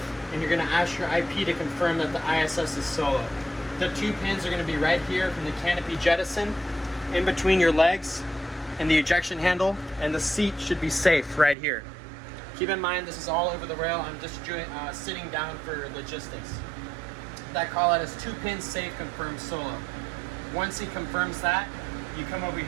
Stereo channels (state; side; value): drops out; left; at 11.6 s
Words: and you're going to ask your IP to confirm that the ISS is solo. The 2 pins are going to be right here from the canopy jettison, in between your legs and the ejection handle, and the seat should be safe right here. Keep in mind, this is all over the rail. I'm just sitting down for logistics. That call out is 2 pins safe, confirmed solo. Once he confirms that, you come over